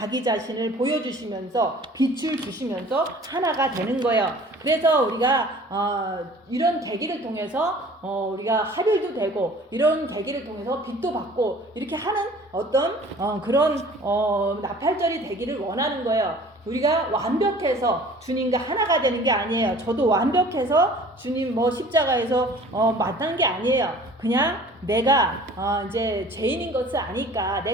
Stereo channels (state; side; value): normal; both; correlation 0.48